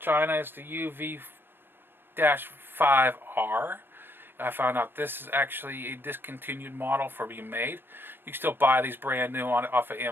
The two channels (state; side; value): late; left; 0.098 ms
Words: It's the UV-5R. I found out this is actually a discontinued model for being made. You can still buy these brand new off of